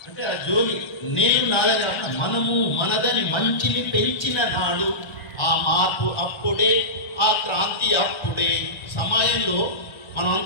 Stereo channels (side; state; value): right; late; 1.4 ms